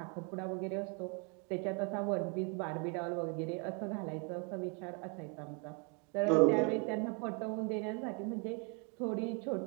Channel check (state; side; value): quieter; left; 36.2 dB